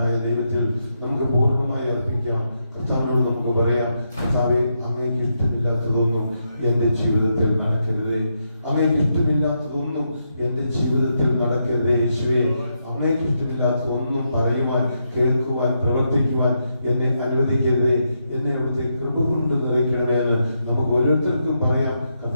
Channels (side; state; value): both; inverted; correlation -0.82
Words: ദൈവത്തിൽ നമുക്ക് പൂർണ്ണമായി അർപ്പിക്കാം. കർത്താവിനോട് നമുക്ക് പറയാം, കർത്താവേ, അങ്ങേക്ക് ഇഷ്ടമില്ലാത്തതൊന്നും എൻ്റെ ജീവിതത്തിൽ നടക്കരുതേ, അങ്ങേക്ക് ഇഷ്ടമില്ലാത്തതൊന്നും എൻ്റെ ജീവിതത്തിൽ നടക്കരുതേ. യേശുവേ, അങ്ങേക്ക് ഇഷ്ടമില്ലാത്തതൊന്നും പറയുവാൻ, കേൾക്കുവാൻ, പ്രവർത്തിക്കുവാൻ എന്നെ അനുവദിക്കരുതേ. എന്നെ അവിടുത്തെ കൃപ കൊണ്ട് നിറയ്ക്കണമേ എന്ന് നമുക്ക് ഓരോരുത്തർക്കും പറയാം.